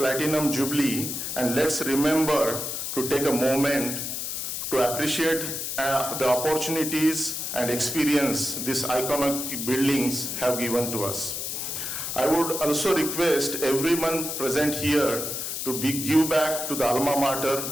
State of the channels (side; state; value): left; noise; hiss, 4 dB below the sound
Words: Jubilee, and let's remember to take a moment to appreciate the opportunities and experience these iconic buildings have given to us. I would also request everyone present here to give back to the alma mater,